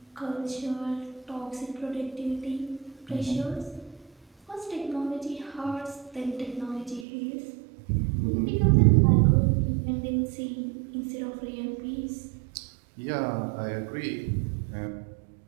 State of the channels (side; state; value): left; drops out; at 7.1 s